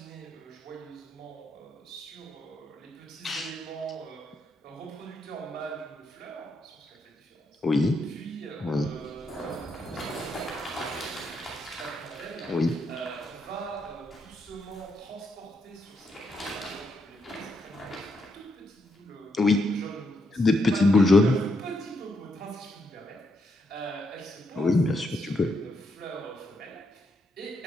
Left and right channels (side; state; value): both; normal; correlation 0.78